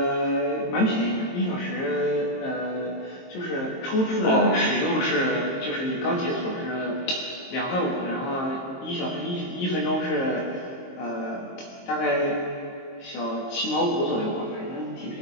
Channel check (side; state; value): right; late; 22 ms